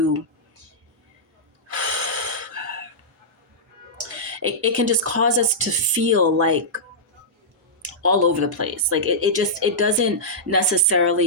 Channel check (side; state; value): both; normal; correlation -0.12